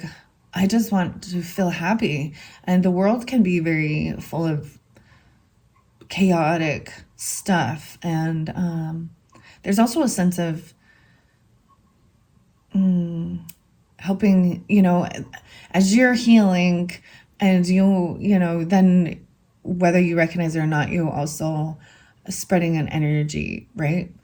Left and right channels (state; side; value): identical; both; correlation 1.00